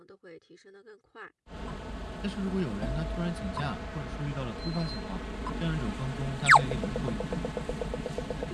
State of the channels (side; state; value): both; identical; correlation 1.00